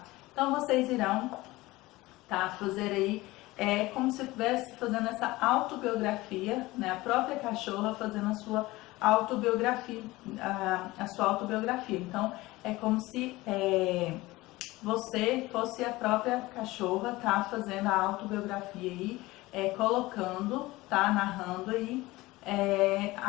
Então, vocês irão, tá, fazer aí, como se estivesse fazendo essa autobiografia, né, a própria cachorra fazendo a sua autobiografia, Então, é como se você fosse a própria cachorra, tá, fazendo a autobiografia aí, colocando, tá, narrando aí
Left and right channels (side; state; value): right; quieter; 19.7 dB